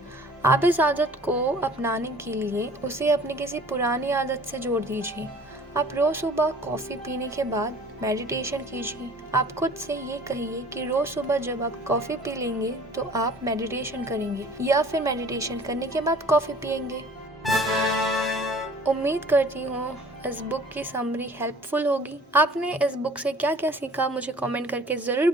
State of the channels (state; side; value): normal; both; correlation 0.49